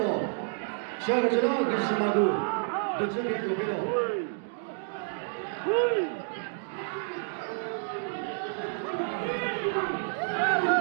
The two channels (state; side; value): silent; left; 58 dB below the other